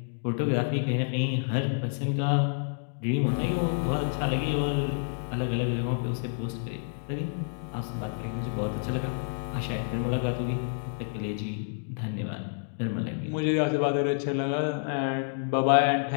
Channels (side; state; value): right; silent; 59 dB below the other